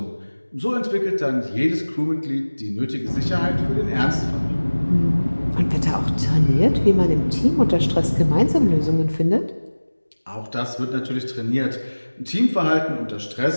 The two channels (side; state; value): both; inverted; correlation -1.00